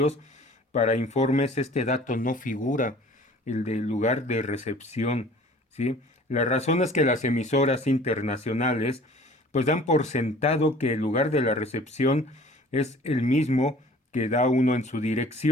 para informes este dato no figura, el del lugar de recepción, ¿sí? La razón es que las emisoras internacionales pues dan por sentado que el lugar de la recepción es el mismo que da uno en su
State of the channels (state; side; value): normal; both; correlation 0.48